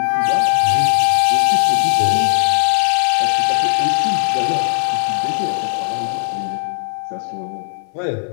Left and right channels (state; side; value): silent; right; 62 dB below the other